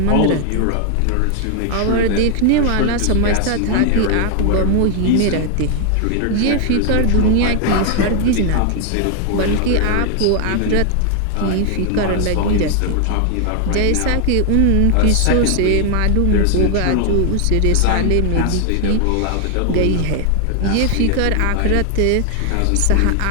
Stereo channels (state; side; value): different; both; correlation 0.00